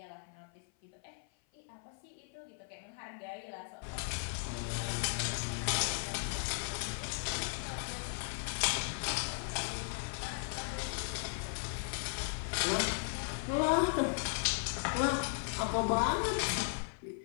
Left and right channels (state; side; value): silent; right; 53 dB below the other